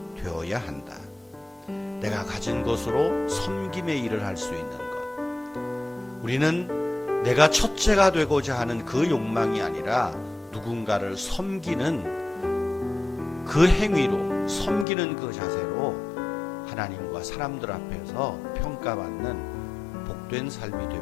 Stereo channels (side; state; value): right; drops out; at 14.9 s